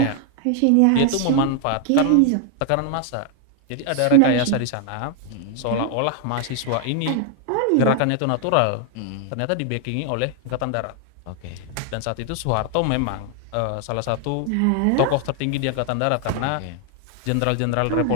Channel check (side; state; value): both; different; correlation 0.00